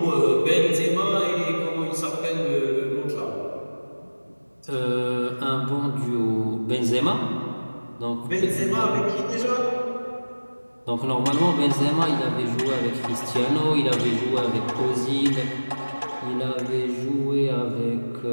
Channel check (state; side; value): inverted; both; correlation -1.00